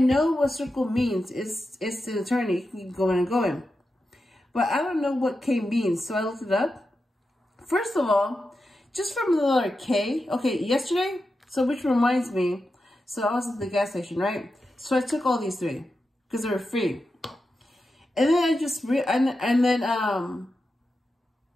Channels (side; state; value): both; normal; correlation 0.90